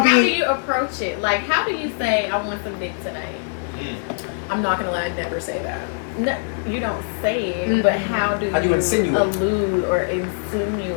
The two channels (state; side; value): silent; right; digital silence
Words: do B. you approach it? Like, how do you say, I want some dick tonight? I'm not gonna lie, I never say that. No, you don't say it, but how do How do you insinuate? allude or